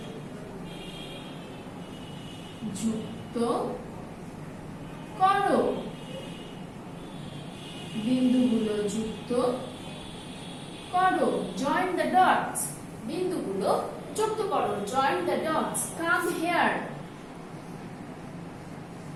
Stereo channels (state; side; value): identical; both; correlation 1.00